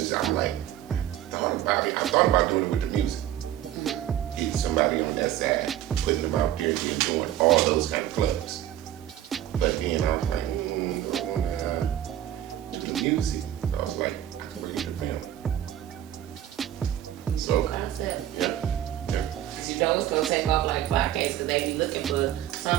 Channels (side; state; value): left; quieter; 12.1 dB